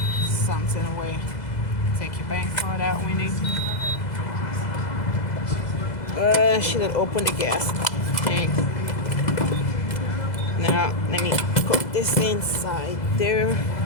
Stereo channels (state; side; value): late; right; 2.0 ms